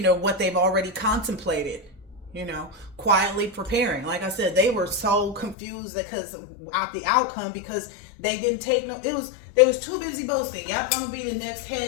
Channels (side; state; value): right; drops out; at 5.6 s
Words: know, what they've already contemplated, you know, quietly preparing. Like I said, they were so confused because out the outcome, because they didn't take no, they was too busy boasting. Yep, I'm gonna be the next